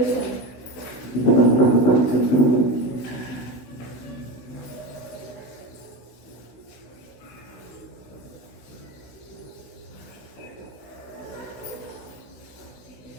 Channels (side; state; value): right; late; 16 ms